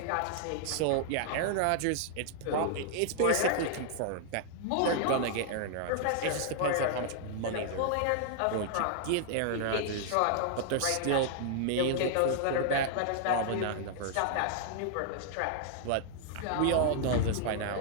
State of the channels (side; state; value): both; different; correlation -0.01